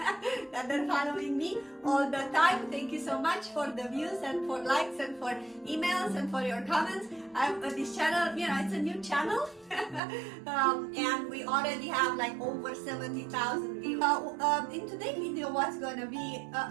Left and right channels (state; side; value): drops out; left; at 10.0 s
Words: are following me all the time. Thank you so much for the views and for likes and for emails and for your comments. This channel, you know, it's a new channel and we already have like over 70,000 views. In today's video, what's going to be,